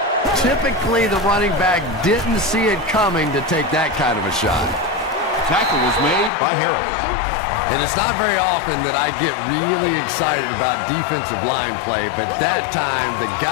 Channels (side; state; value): right; drops out; at 6.3 s